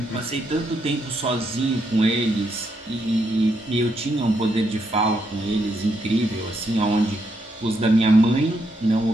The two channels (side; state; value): both; normal; correlation 0.78